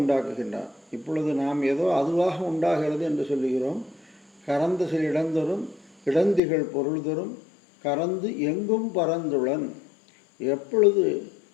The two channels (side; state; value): right; drops out; at 6.4 s